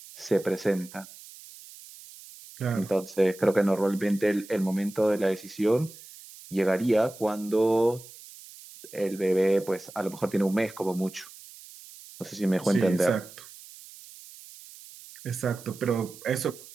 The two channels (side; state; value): right; noise; hiss, 18 dB below the sound